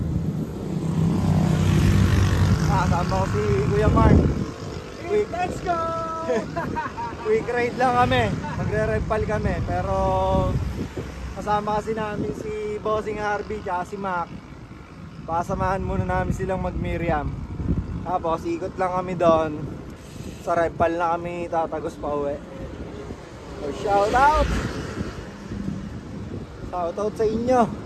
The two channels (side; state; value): both; identical; correlation 1.00